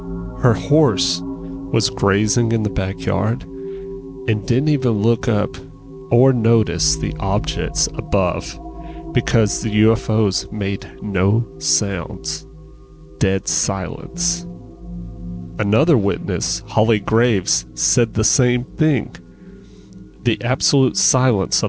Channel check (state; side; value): identical; both; correlation 1.00